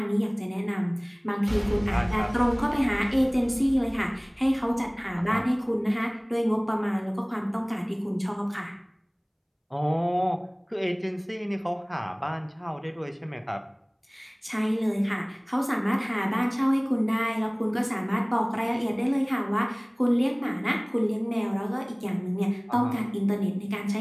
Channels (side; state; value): both; identical; correlation 1.00